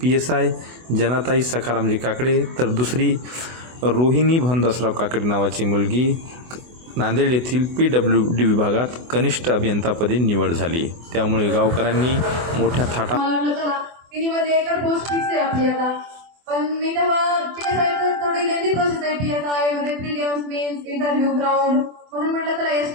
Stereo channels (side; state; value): left; late; 24 ms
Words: PSI जनाताई सखारामजी काकडे, तर दुसरी रोहिणी भानदासराव काकडे नावाची मुलगी नांदेड येथील PWD विभागात कनिष्ठ अभियंतापदी निवड झाली. त्यामुळे गावकऱ्यांनी मोठ्या थाटा एकर पोस्ट फिक्स आहे आपली आता. पण मी तेव्हा PSI थोडी लेंदी प्रोसेस आहे. PSI मध्ये प्रिलिम्स, मेन्स, इंटरव्ह्यू, ग्राउंड, म्हणून म्हटलं चला